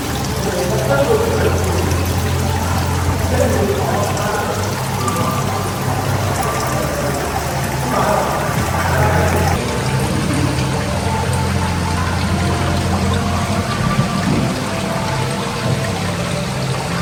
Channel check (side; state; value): both; identical; correlation 1.00